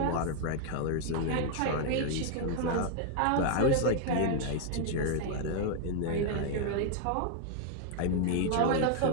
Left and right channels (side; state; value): both; different; correlation 0.00